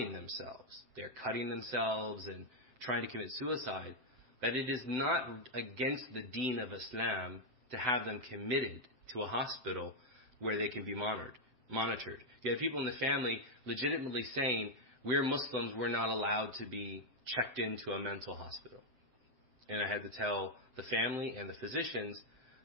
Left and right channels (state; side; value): late; left; 7.9 ms